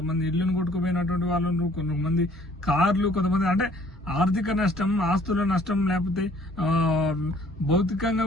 ఇళ్లను కొట్టుకుపోయినటువంటి వాళ్ళు ఉన్నారు, కొంతమంది కార్లు, కొంతమంది అంటే ఆర్థిక నష్టం, ఆస్తుల నష్టం, లేకపోతే భౌతికంగా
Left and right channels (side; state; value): both; normal; correlation 0.58